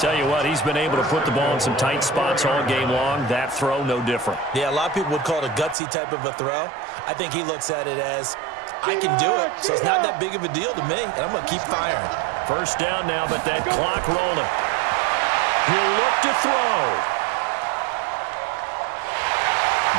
you what, he's been able to put the ball in some tight spots all game long. That throw, no different. Yeah, a lot of people would call it a gutsy type of a throw. I think he looks at it as, I can do it, so it's not that big of a deal to me, and I'm going to keep firing. First down now, but that clock rolling. He'll look to throw.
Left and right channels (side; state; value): left; drops out; at 5.8 s